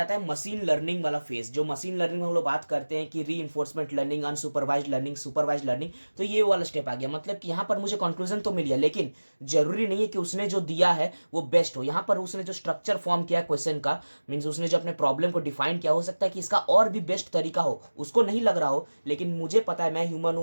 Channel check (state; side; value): inverted; both; correlation -1.00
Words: है मशीन लर्निंग वाला फेज। जो मशीन लर्निंग में हम लोग बात करते हैं कि reinforcement learning, unsupervised learning, supervised learning, तो ये वाला स्टेप आ गया। मतलब कि यहाँ पर मुझे कंक्लूजन तो मिल गया, लेकिन जरूरी नहीं है कि उसने जो दिया है वो बेस्ट हो। यहाँ पर उसने जो स्ट्रक्चर फॉर्म किया क्वेश्चन का, मीन्स उसने जो अपने प्रॉब्लम को डिफाइन किया, हो सकता है कि इसका और भी बेस्ट तरीका हो, उसको नहीं लग रहा हो, लेकिन मुझे पता है, मैं ह्यूमन